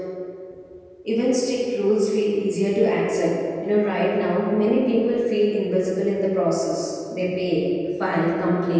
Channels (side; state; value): both; identical; correlation 1.00